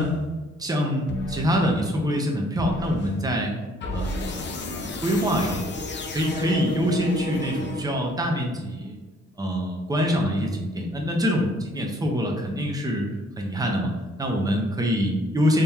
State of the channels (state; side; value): normal; both; correlation 0.63